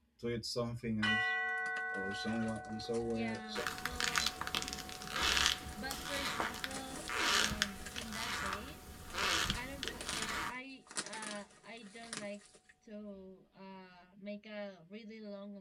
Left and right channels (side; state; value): both; identical; correlation 1.00